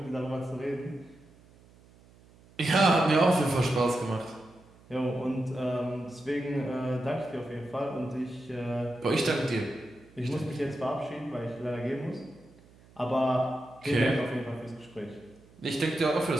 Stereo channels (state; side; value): noise; right; hum, 26 dB below the sound